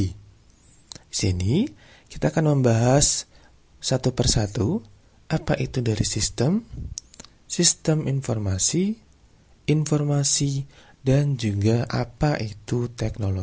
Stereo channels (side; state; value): both; identical; correlation 1.00